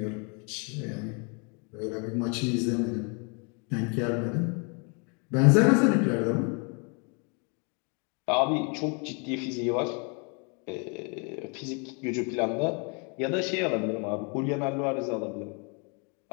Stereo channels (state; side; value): quieter; right; 35.4 dB